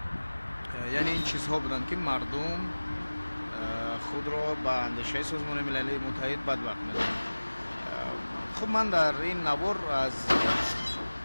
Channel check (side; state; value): both; inverted; correlation -1.00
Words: یعنی این چیزها بودند که مردم خود را به اندیشه سازمان ملل متحد بدبخت می‌دانند. خب من در این نوار از